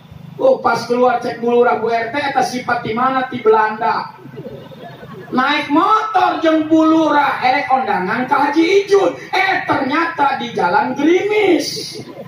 Oh pas keluar cek Bu Lurah Bu RT, eta sifat di mana? Di Belanda. Naik motor jeung Bu Lurah erek kondangan ke Haji Ijun, ternyata di Jalan Gerimis.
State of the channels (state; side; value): identical; both; correlation 1.00